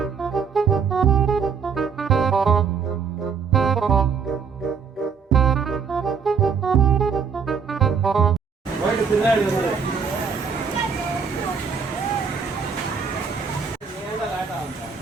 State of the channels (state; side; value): quieter; left; 6.0 dB